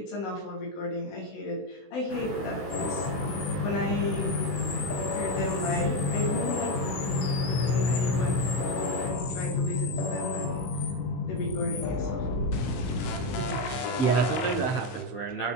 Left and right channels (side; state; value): right; late; 16 ms